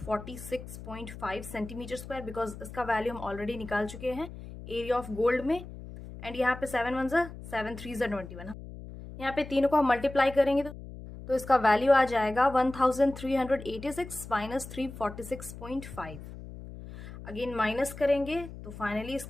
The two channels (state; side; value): noise; left; hum, 13 dB below the sound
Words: centimetre square, because इसका वैल्यू हम ऑलरेडी निकाल चुके हैं एरिया ऑफ गोल्ड में। एंड यहाँ पे 7 1 7 3 21, यहाँ पे तीनों को हम मल्टीप्लाई करेंगे तो इसका वैल्यू आ जाएगा 1386 माइनस 346.5। अगेन माइनस करेंगे तो फाइनली